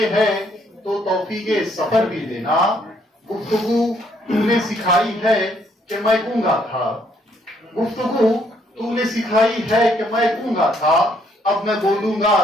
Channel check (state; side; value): normal; both; correlation 0.69